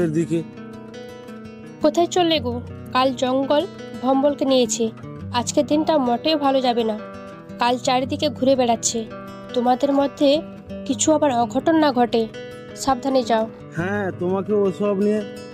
দিকে। কোথায় চললে গো? কাল জঙ্গল ভম্বলকে নিয়েছে। আজকের দিনটা মোটেও ভালো যাবে না। কাল চারিদিকে ঘুরে বেড়াচ্ছে। তোমাদের মধ্যে কিছু আবার অঘটন না ঘটে, সাবধানে যাও। হ্যাঁ, তোমাকে ওসব নিয়ে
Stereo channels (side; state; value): both; identical; correlation 1.00